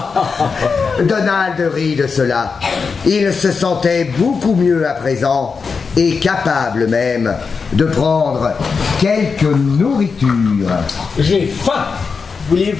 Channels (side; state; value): right; quieter; 5.2 dB